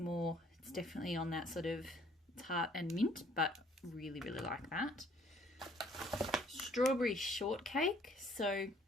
definitely on that sort of tart and mint, but really, really like that. Strawberry shortcake. So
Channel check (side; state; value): both; normal; correlation 0.60